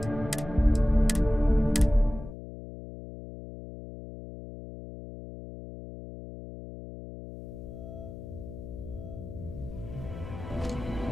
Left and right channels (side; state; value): left; noise; hum, 12 dB below the sound